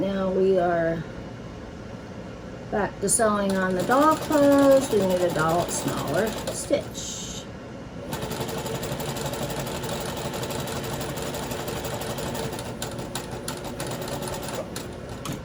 we are back to sewing on the doll clothes. We need a smaller stitch.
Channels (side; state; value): both; identical; correlation 1.00